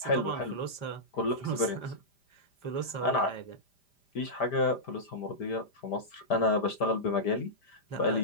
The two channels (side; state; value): right; late; 5.0 ms